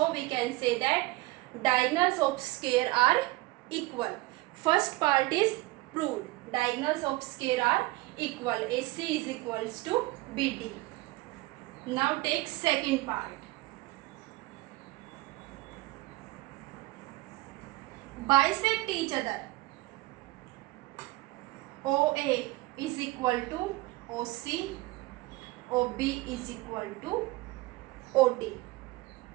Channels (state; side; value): quieter; left; 20.9 dB